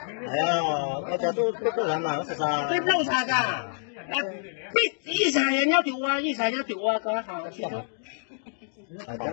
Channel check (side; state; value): right; silent; digital silence